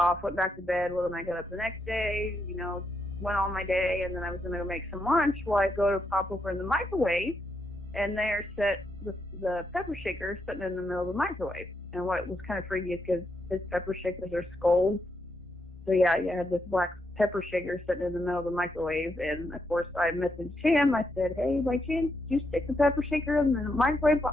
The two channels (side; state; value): both; normal; correlation 0.80